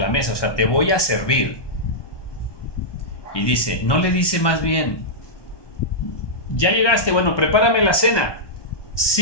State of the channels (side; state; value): right; late; 1.2 ms